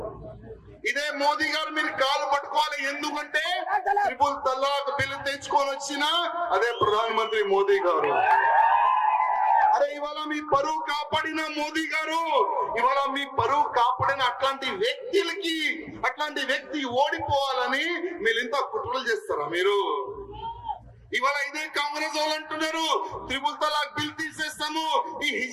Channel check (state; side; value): identical; both; correlation 1.00